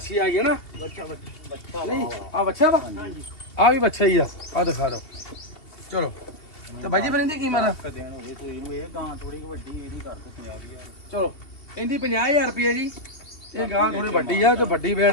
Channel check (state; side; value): late; right; 2.7 ms